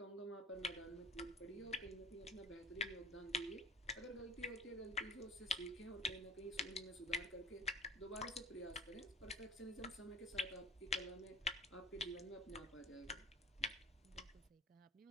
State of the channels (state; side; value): normal; both; correlation 0.43